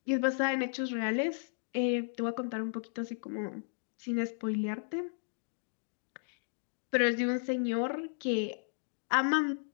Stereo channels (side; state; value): right; silent; digital silence